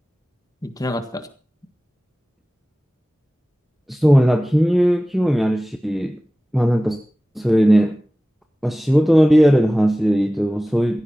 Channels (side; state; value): both; normal; correlation 0.98